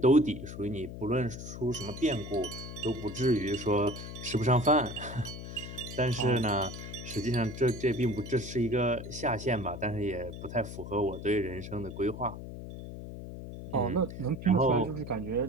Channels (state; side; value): noise; left; hum, 10 dB below the sound